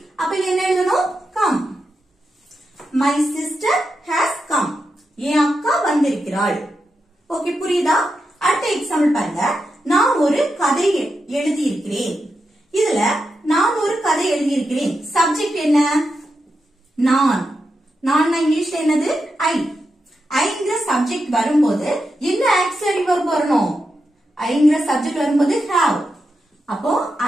அப்ப என்ன எழுதணும்? come. My sister has come. என் அக்கா வந்திருக்கிறாள். ஓகே, புரியுதா? அடுத்த எக்ஸாம்பிள் பாருங்க. நான் ஒரு கதை எழுதி இருக்கிறேன். இதுல நான் ஒரு கதை எழுதி இருக்கிறேன். சப்ஜெக்ட் என்ன? நான். நான் இங்கிலீஷ்ல என்னது? I. ஐங்கிற சப்ஜெக்ட் வரும்போது என்ன ஆக்சிலரி verb வரணும்? ஐங்கிற சப்ஜெக்ட் வரும்போது have. அப்போ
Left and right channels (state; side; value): normal; both; correlation 0.87